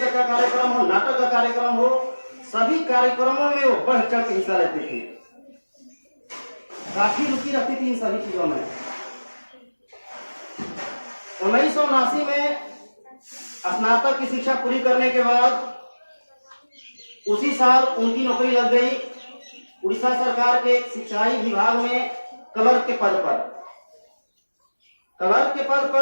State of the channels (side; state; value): both; inverted; correlation -1.00